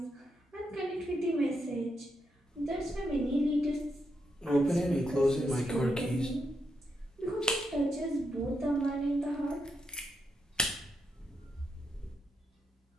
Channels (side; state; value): both; normal; correlation 0.82